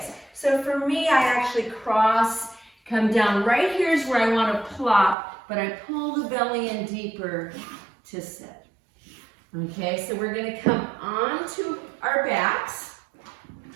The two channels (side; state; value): left; drops out; at 5.2 s